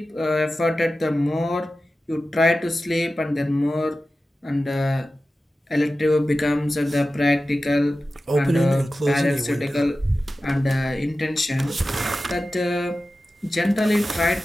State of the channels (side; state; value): both; normal; correlation 0.94